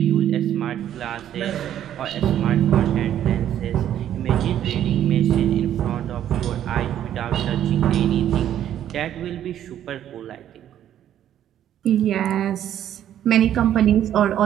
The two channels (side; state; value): left; quieter; 10.9 dB